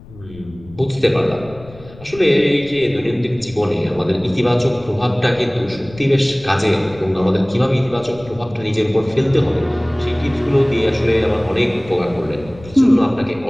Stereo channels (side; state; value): left; noise; rumble, 20 dB below the sound